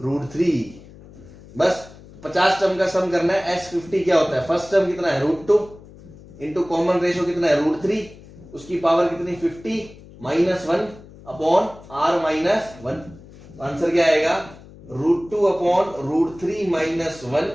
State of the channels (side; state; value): left; noise; hum, 20 dB below the sound